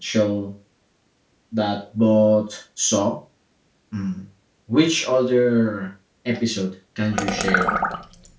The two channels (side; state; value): both; identical; correlation 1.00